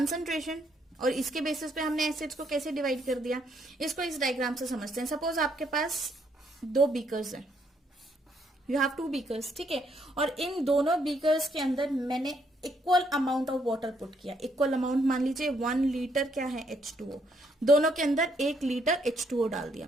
और इसके बेसिस पे हमने एसिड्स को कैसे डिवाइड कर दिया, इसको इस डायग्राम से समझते हैं। सपोज आपके पास 2 बीकर्स हैं, यू हैव 2 बीकर्स, ठीक है, और इन दोनों बीकर्स के अंदर मैंने equal amount of water put किया। इक्वल अमाउंट मान लीजिए 1 लीटर क्या है, H2O, दोनों के अंदर 1 लीटर H2O डाल दिया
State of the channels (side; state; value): both; normal; correlation 0.72